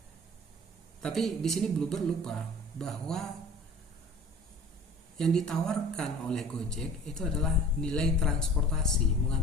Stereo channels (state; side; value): normal; both; correlation 0.44